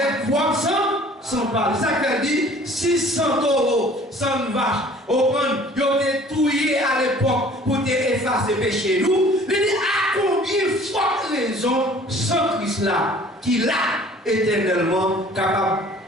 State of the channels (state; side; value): normal; both; correlation 0.51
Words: propre sang, sans parler. Ça fait dit 600 euros, 100 vaches, au point, ils ont été touillés à l'époque pour te effacer péché nous. Il dit à combien de fortes raisons sans Christ là, qui l'a éternellement capable